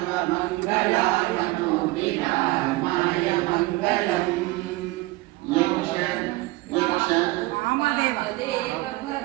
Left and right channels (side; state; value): left; quieter; 20.7 dB